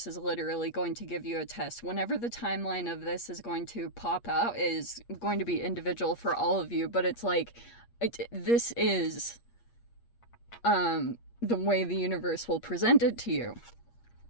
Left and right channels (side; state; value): right; late; 8.5 ms